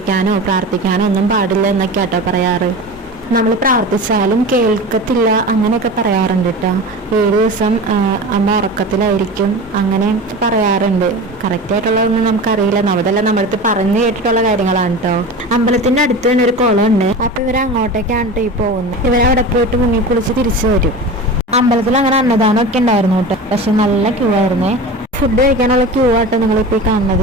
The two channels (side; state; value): both; normal; correlation 0.31